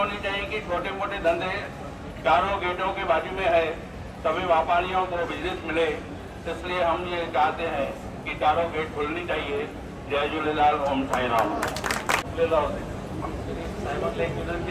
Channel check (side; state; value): both; identical; correlation 1.00